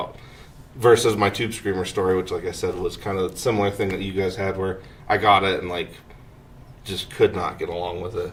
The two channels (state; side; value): identical; both; correlation 1.00